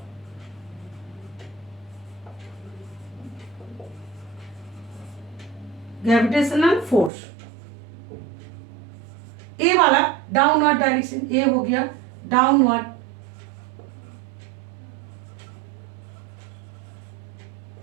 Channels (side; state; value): left; drops out; at 7.1 s